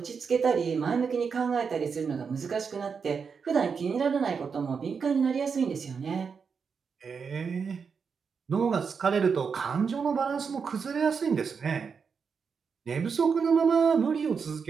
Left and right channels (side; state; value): left; quieter; 5.9 dB